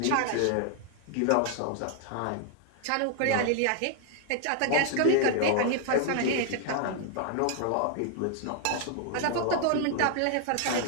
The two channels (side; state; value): both; different; correlation 0.00